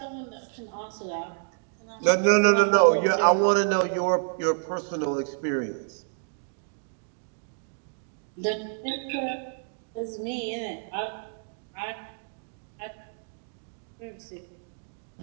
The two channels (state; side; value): silent; left; digital silence